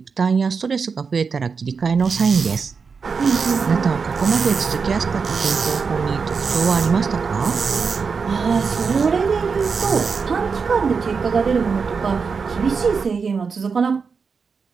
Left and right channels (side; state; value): left; quieter; 5.4 dB